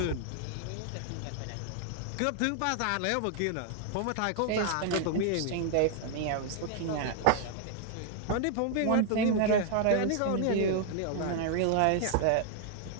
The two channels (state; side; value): different; both; correlation 0.00